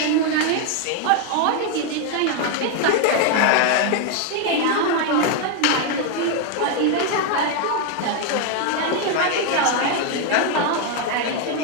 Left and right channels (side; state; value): both; different; correlation 0.01